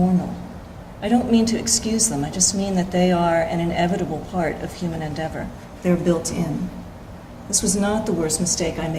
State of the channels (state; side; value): identical; both; correlation 1.00